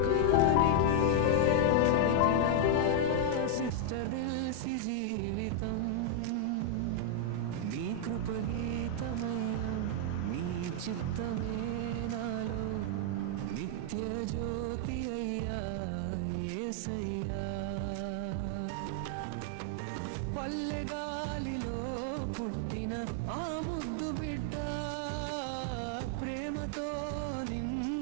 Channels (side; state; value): both; different; correlation 0.00